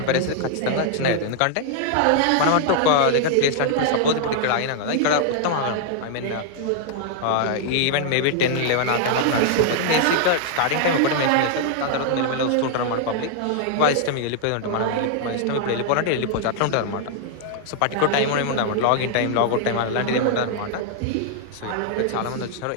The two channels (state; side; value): different; both; correlation -0.01